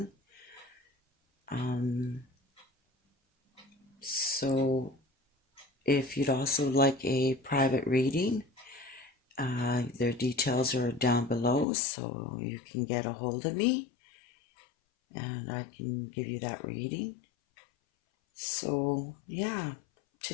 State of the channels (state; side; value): drops out; right; at 11.7 s